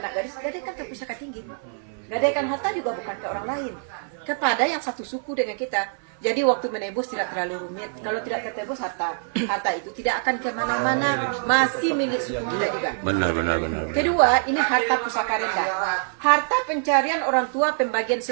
gadis. Gadaikan ke pusaka tinggi. Gadaikan harta juga bukan ke orang lain, kepada yang satu suku dengan kita. Jadi waktu menebus tidak terlalu rumit. Kalau tidak tertebus harta itu tidak akan kemana-mana, masih milik suku kita juga. Benar. Kedua, ini harta pusaka rendah. Harta pencarian orang tua pembagian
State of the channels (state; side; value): silent; left; 56 dB below the other